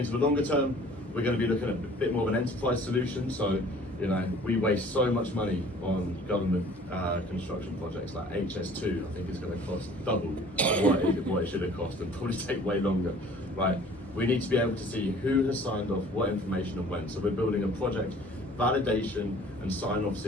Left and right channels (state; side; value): normal; both; correlation 0.50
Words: the longer term, we're going to be looking at a bit more of an enterprise solution. So, you know, we waste so much money on government construction projects like HS2. I think it's going to cost double what it should have cost, and probably take way longer, right? We need to be able to see who has signed off what information and when. So we're building a project validation and sign-off